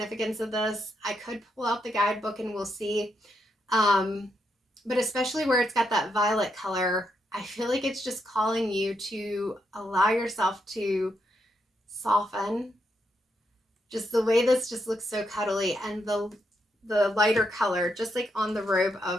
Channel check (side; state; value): both; normal; correlation 0.80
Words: of this. I could pull out the guidebook and we'll see. But especially where it's got that violet color, I feel like it's just calling you to allow yourself to soften. Just the way this just looks so cuddly, and the the lighter color, just like on the robe